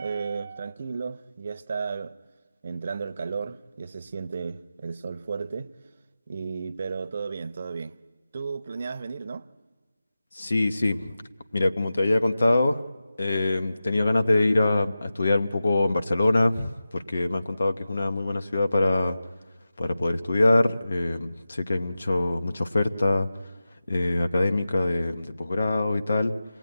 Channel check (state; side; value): inverted; both; correlation -0.93